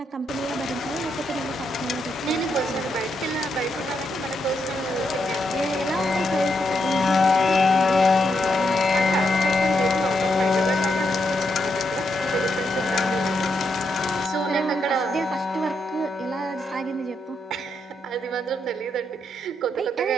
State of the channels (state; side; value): normal; both; correlation 0.80